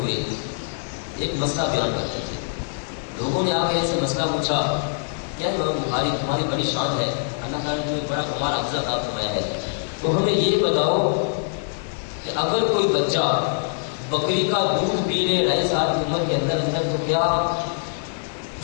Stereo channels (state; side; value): silent; right; digital silence